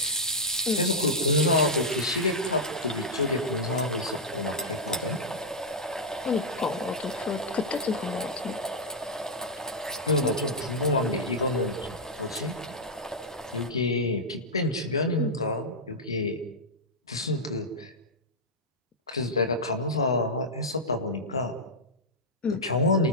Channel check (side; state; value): both; normal; correlation -0.06